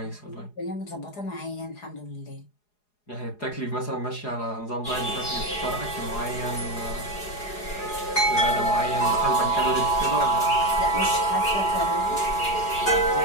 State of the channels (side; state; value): right; late; 4.8 ms